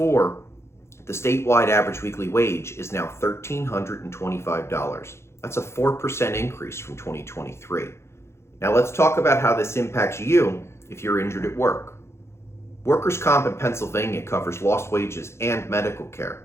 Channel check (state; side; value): late; right; 0.13 ms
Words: the statewide average weekly wage is now $1,325. That's a 4% increase from 2023. Now let's talk about how this impacts you if you're injured at work. Workers' comp in Pennsylvania covers lost wages and medical